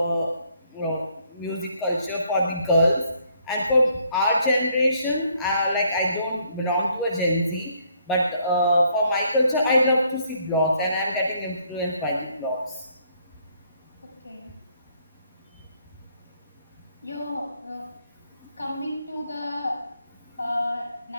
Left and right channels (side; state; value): both; inverted; correlation -0.68